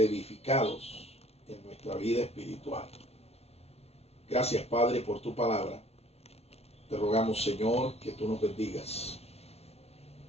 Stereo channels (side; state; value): right; late; 0.30 ms